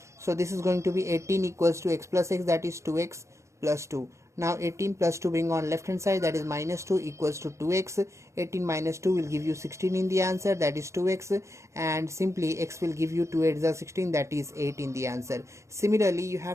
So this is going to be 18 equals to x plus x, that is 2x plus 2. Now 18 plus 2 bring on left hand side, that is minus 2 equals to 2x. 18 minus 2 will give you 16 in the answer, that is 2x, and simply x will give you 2 8 is 16, that is 8 in the answer. Similarly, you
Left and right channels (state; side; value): late; left; 0.14 ms